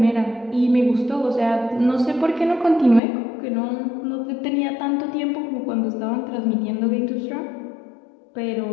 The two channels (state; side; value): drops out; right; at 3.0 s